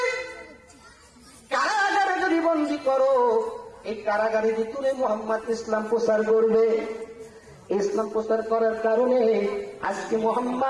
কারাগারে যদি বন্দী করো, এই কারাগারের ভিতরে মুহাম্মদ ইসলাম প্রচার করবে। ইসলাম প্রচার করার কারণে আজকে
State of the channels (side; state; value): both; identical; correlation 1.00